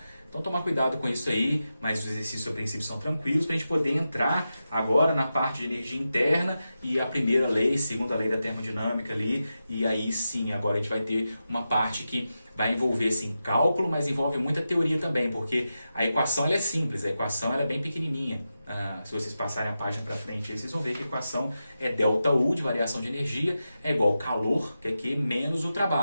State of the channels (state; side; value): inverted; both; correlation -0.90